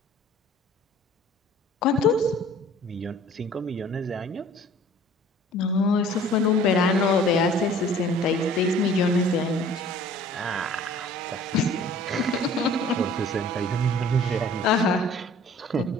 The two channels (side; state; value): both; normal; correlation 0.50